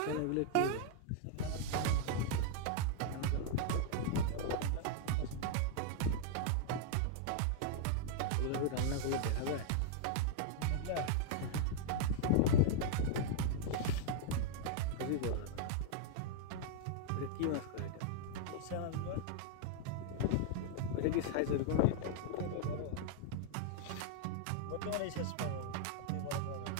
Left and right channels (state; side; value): different; both; correlation 0.00